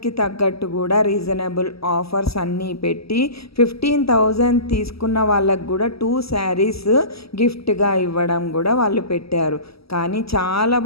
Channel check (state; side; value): late; right; 0.76 ms